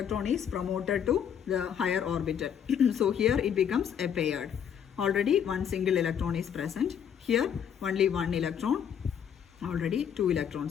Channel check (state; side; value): quieter; right; 8.5 dB